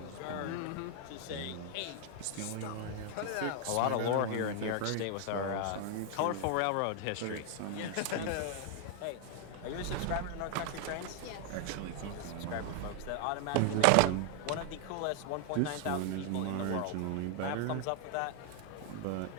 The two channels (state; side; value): different; both; correlation 0.00